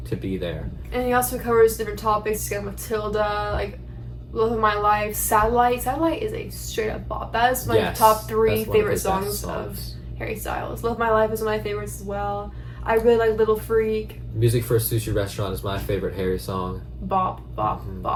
to be there. And he also covers different topics. He's got Matilda, Love of My Life, Satellite. Satellite is a straight up bop. That is my top 3 favorite songs of Harry Styles. Love of My Life is one of my favorites as well. I really like Little Freak. Music for a Sushi Restaurant is my favorite Harry song. Bop, bop,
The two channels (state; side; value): identical; both; correlation 1.00